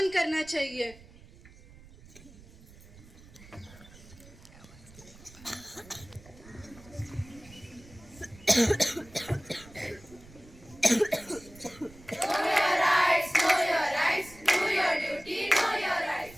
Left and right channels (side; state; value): right; noise; rumble, 21 dB below the sound